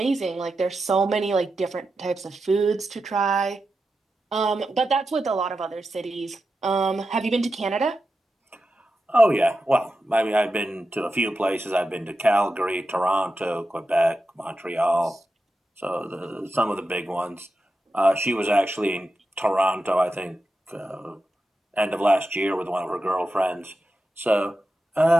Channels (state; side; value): normal; both; correlation 0.90